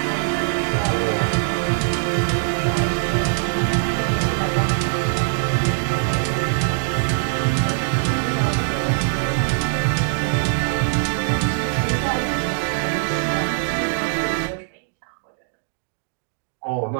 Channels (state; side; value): silent; left; digital silence